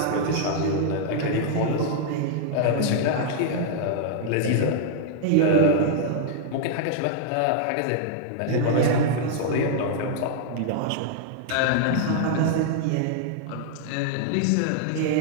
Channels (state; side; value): different; both; correlation -0.01